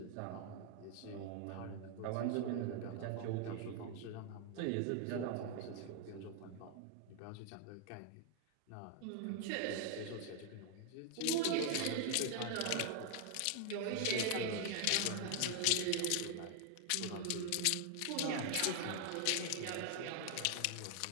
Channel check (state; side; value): different; both; correlation 0.00